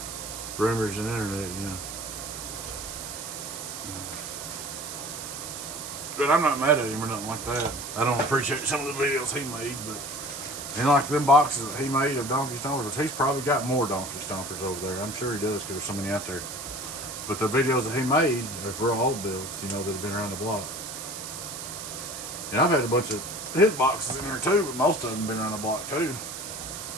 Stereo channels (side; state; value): right; noise; hiss, 8 dB below the sound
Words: rumors and internet, you know. But I'm not mad at him or nothing like that. I don't appreciate some of the videos he made, but and like them boxes that he made of donkey stompers, he's probably got more donkey stompers over there. I'm sure he does, because there's so many out there. But the videos that he made are real old builds, you know, that have been around the block. And I've had a bunch of his boxes in there too, but most of them have been around the block too.